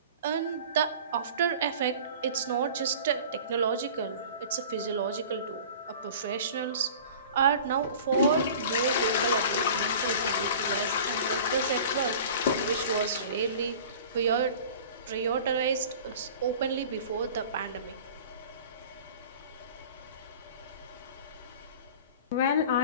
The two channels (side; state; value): both; inverted; correlation -0.41